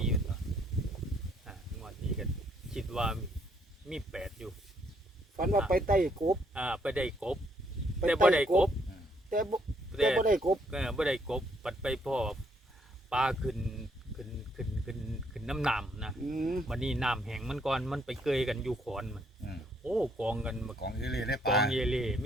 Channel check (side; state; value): both; normal; correlation 0.70